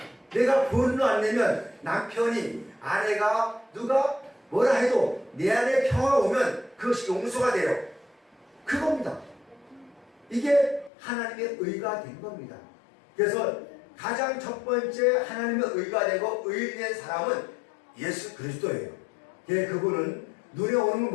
내가 분노 안 내면 남편이 아내가 누가 뭐라 해도 내 안에 평화가 오면 그것이 용서가 돼요. 그겁니다. 이게 하나님의 의가 된 겁니다. 그래서 가장 첫 번째 하나님의 의가 되고 의인된 사람은 예수 그리스도예요. 그분은 눈에 오는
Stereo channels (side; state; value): right; drops out; at 10.9 s